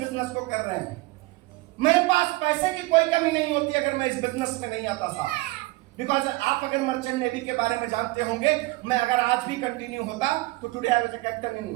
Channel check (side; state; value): left; quieter; 21.7 dB